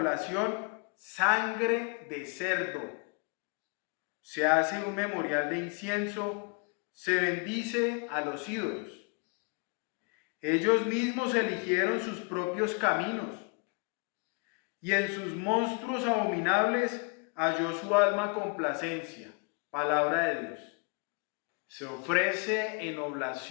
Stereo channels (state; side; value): quieter; right; 33.6 dB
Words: sangre de cerdo, se hace un memorial de incienso, se bendice a los ídolos. Ellos mismos eligieron sus propios caminos, y en sus monstruos abominables halló su alma complacencia. Palabra de Dios. Se ofrece en